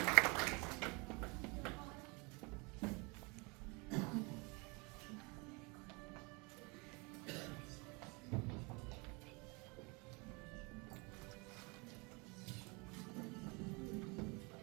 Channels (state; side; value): quieter; left; 29.2 dB